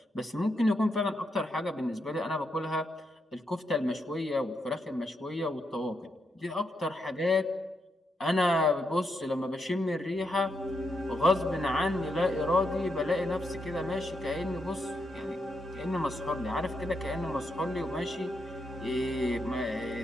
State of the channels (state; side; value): normal; both; correlation 0.81